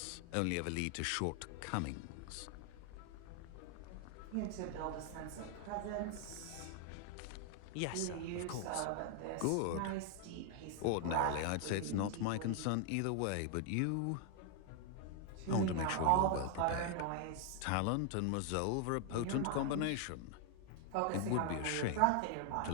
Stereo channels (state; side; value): different; both; correlation 0.00